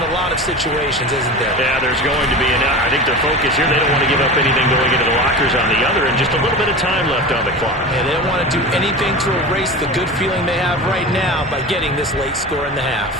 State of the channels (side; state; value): both; normal; correlation 0.30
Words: a lot of situations, isn't there? Yeah, there's going to be. And I think their focus here, they don't want to give up anything going into the lockers on the other, and just a little bit of time left on the clock. Yeah, they don't want to do anything to erase the good feeling they have right now by getting this late score in the half.